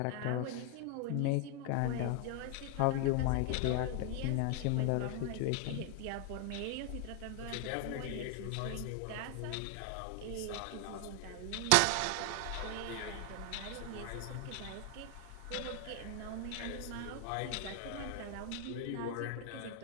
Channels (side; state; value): both; different; correlation 0.00